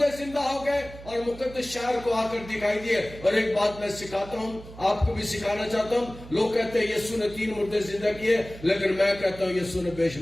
زندہ ہو گئے اور مقدس شہر کو آ کر دکھائی دیے. اور ایک بات میں سکھاتا ہوں، آپ کو بھی سکھانا چاہتا ہوں. لوگ کہتے ہیں یسوع نے 3 مردے زندہ کیے، لیکن میں کہتا ہوں یسوع نے بے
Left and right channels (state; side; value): noise; right; hum, 16 dB below the sound